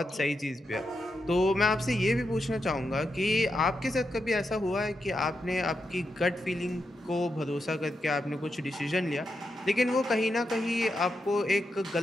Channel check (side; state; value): both; normal; correlation 0.85